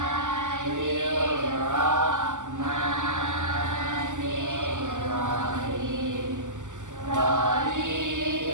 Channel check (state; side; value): late; left; 0.86 ms